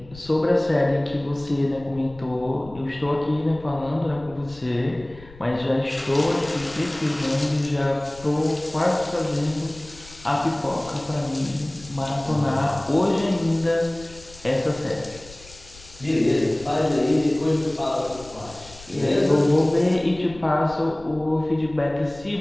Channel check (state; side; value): noise; left; rumble, 20 dB below the sound